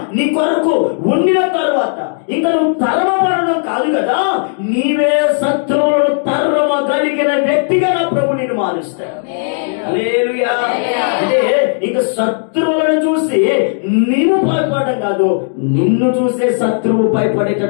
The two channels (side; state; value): right; silent; digital silence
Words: నీ కొరకు ఉండిన తర్వాత ఇంకా నువ్వు తరమబడడం కాదు కదా, నీవే శత్రువులను తరమగలిగిన వ్యక్తిగా నా ప్రభు నిన్ను మారుస్తాడు. హల్లెలూయా. అంటే ఇంకా శత్రువులను చూసి నీవు భయపడడం కాదు, నిన్ను చూసే శత్రువు